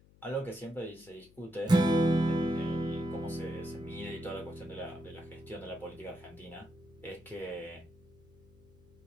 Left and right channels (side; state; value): left; noise; hum, 27 dB below the sound